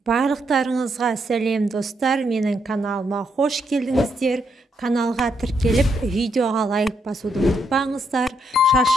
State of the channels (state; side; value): normal; both; correlation 0.77